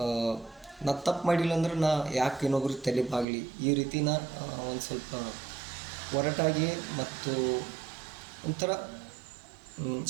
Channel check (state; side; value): drops out; left; at 3.2 s